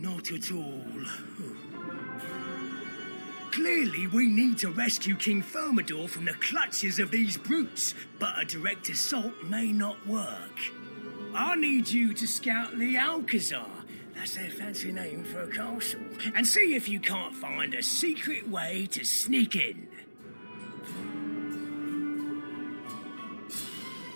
at all. Clearly, we need to rescue King Thermidor from the clutches of these brutes, but a direct assault may not work. I need you to scout the Alcazar, that's their fancy name for a castle, and see if you can't find a secret way to sneak in.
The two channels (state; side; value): inverted; both; correlation -1.00